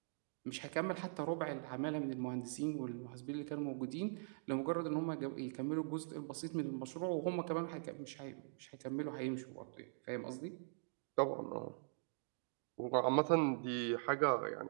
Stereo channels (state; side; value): silent; left; digital silence